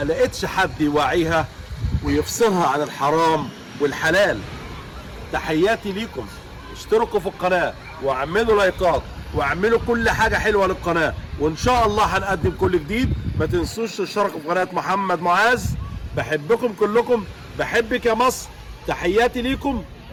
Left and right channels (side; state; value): both; identical; correlation 1.00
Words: حد يوعيها ويفصلها عن الحرام والحلال. تحياتي ليكم، اشتركوا في القناة واعملوا لايكات واعملوا كل حاجة حلوة للقناة، وان شاء الله هنقدم كل جديد. ما تنسوش تشتركوا في قناة محمد معاذ. بحبكم كلكم، بحبك يا مصر. تحياتي ليكم،